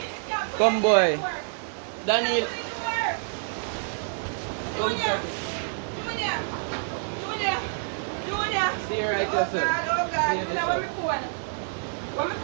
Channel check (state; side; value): silent; left; digital silence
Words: Come, boy. Daniel. Come, Scotty. Stay right there, sir. Where's my